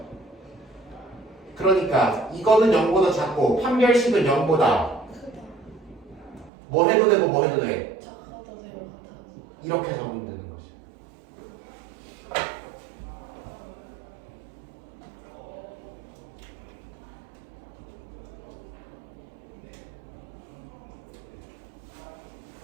그러니까 이거는 0보다 작고 판별식은 0보다 뭐 해도 되고 뭐 해도 돼. 작아도 되고 같아도. 이렇게 적으면 되는 거지.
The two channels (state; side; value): drops out; left; at 6.5 s